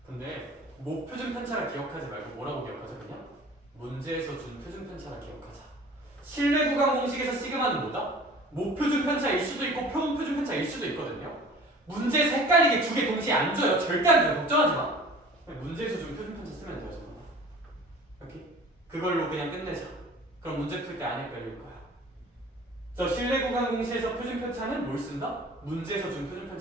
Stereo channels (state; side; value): normal; both; correlation 0.44